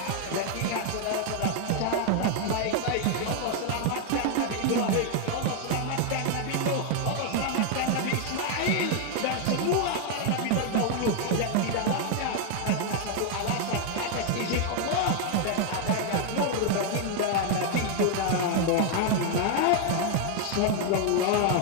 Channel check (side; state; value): both; different; correlation 0.00